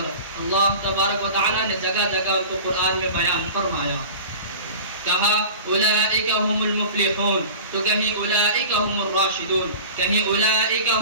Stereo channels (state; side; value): inverted; both; correlation -0.38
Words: اللہ تبارک و تعالی نے جگہ جگہ ان کو قرآن میں بیان فرمایا. کہا اولئک هم المفلحون، تو کہیں اولئک هم الراشدون، کہیں اولئک